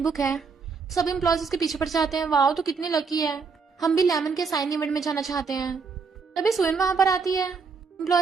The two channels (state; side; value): quieter; left; 5.1 dB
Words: बुक है, सब एम्प्लॉयज उसके पीछे पड़ जाते हैं, वाओ तो कितनी लकी है, हम भी लेमन के साइन इवेंट में जाना चाहते हैं। तभी सुयन वहां पर आती है।